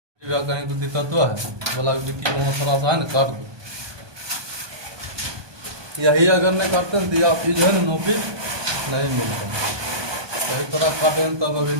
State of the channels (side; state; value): left; late; 1.2 ms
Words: या कहीं को दिक्कत तो है, बोला डिक्की वहाँ थोड़ा सा है ना काट दो। यही अगर नहीं काटते हैं तो या फिर जो है ना नोपी नहीं मिलता। सही तरह काटे हैं तब अभी